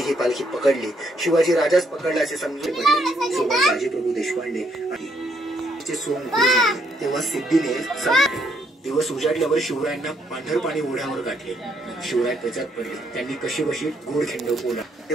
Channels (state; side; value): normal; both; correlation 0.72